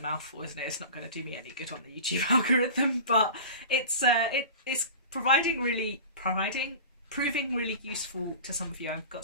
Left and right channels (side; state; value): both; inverted; correlation -0.35